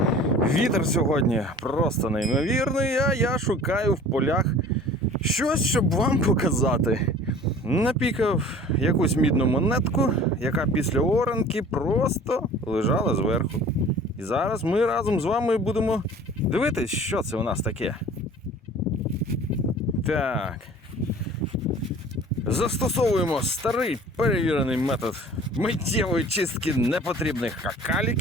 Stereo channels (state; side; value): normal; both; correlation 0.46